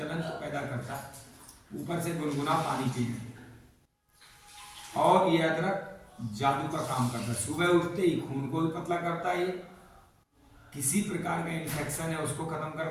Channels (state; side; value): identical; both; correlation 1.00